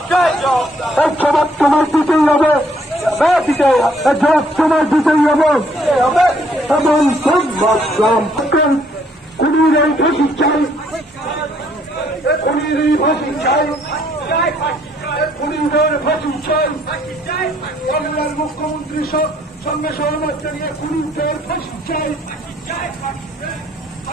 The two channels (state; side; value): normal; both; correlation 0.66